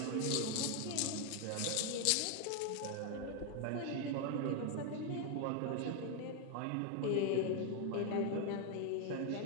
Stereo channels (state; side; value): different; both; correlation 0.01